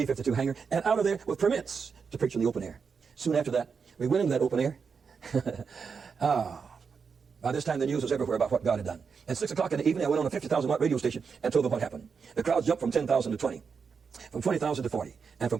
hangar, and out of there with permits to preach in the open air. Soon after that, we went into that open air. By this time, the news was everywhere about what God had done. At 6 o'clock in the evening, I went on a 50,000-watt radio station and told them what happened. The crowds jumped from 10,000 to 20. From 20,000 to 40, and from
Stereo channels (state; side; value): quieter; left; 5.8 dB